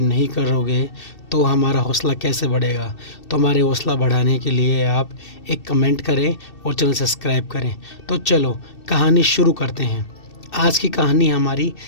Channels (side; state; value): right; late; 2.7 ms